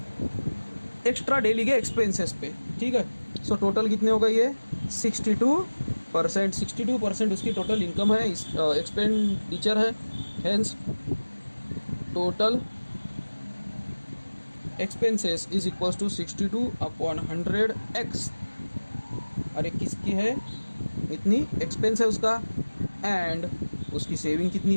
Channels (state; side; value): inverted; both; correlation -1.00